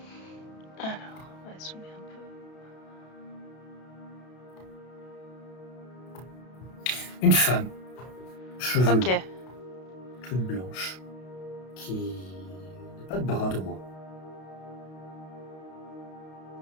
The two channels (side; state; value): right; late; 32 ms